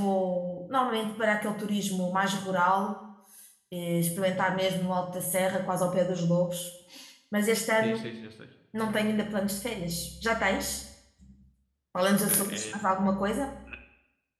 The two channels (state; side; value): identical; both; correlation 1.00